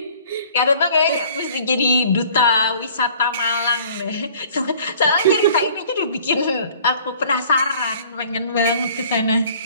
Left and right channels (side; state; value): both; inverted; correlation -0.52